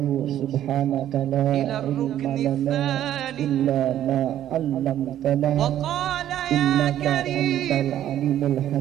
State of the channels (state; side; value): quieter; left; 11.7 dB